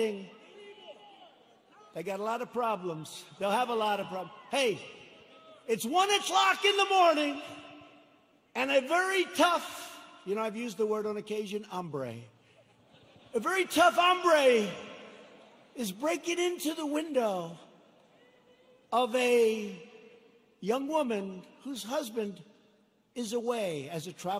They got a lot of problems. They'll have a lot of problems. Hey, it's 1 o'clock in the morning, and a very tough, you know, I've used the word on occasion, hombre. A very tough hombre is breaking into the window of a young woman whose husband is away as a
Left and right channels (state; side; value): identical; both; correlation 1.00